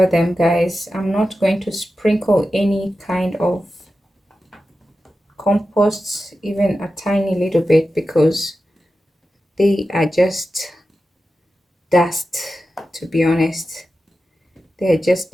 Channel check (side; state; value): both; normal; correlation 0.92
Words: them, guys. I'm not going to sprinkle any kind of compost, even a tiny little bit, because they are just dust, to be honest. They're just